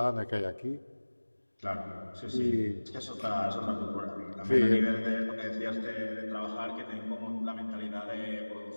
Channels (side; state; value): both; inverted; correlation -1.00